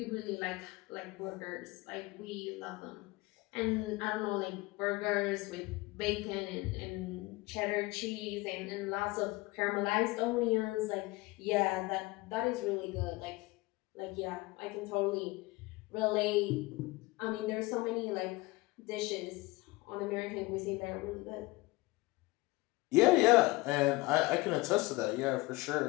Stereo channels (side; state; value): right; quieter; 22.2 dB